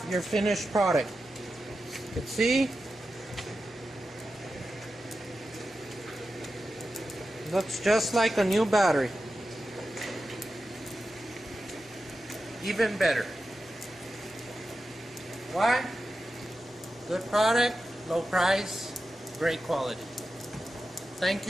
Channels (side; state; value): both; normal; correlation 0.91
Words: your finished product. You can see Looks just like a new battery. Even better. Why? Good product, low price, great quality. Thank